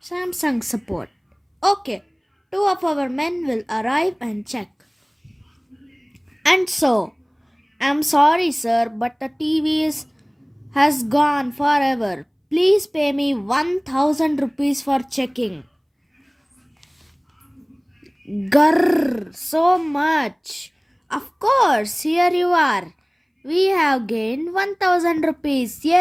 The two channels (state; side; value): identical; both; correlation 1.00